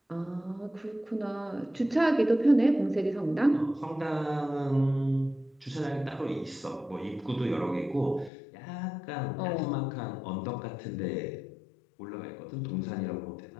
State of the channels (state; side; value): drops out; right; at 8.3 s